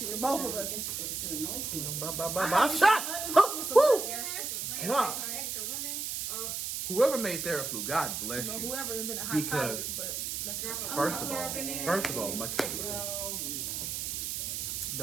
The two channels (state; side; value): noise; right; hiss, 3 dB below the sound